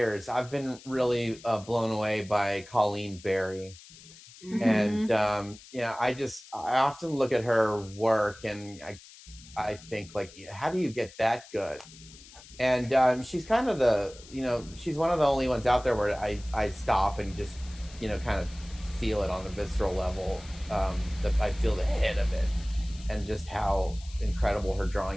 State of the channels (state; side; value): noise; left; hiss, 20 dB below the sound